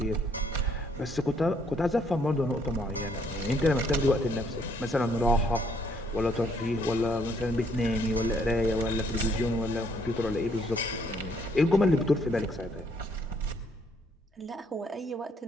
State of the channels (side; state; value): both; normal; correlation 0.67